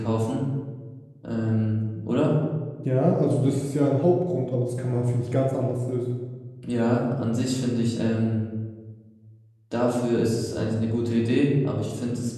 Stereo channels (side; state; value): both; identical; correlation 1.00